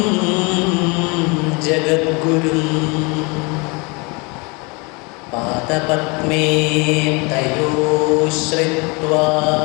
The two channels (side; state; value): right; quieter; 29.0 dB